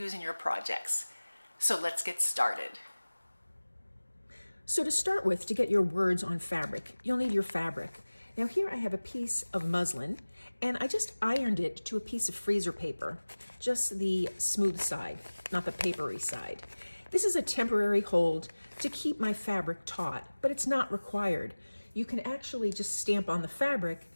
in your projects. So let's get started. So to start with, to get your words on fabric, you'll need your fabric. Now here I have a piece of muslin, and I just ironed it to a piece of freezer paper, just the smooth side, not the papery side. This is a temporary hold to keep my fabric taut, but it's not required. You can actually just stamp on the fabric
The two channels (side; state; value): both; inverted; correlation -1.00